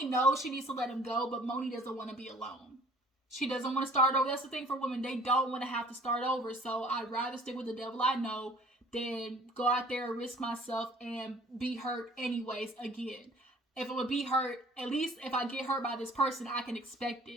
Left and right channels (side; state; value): both; normal; correlation 0.52